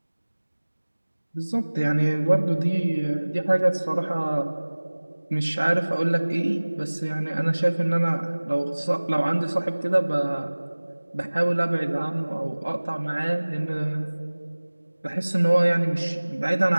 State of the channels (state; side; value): inverted; both; correlation -1.00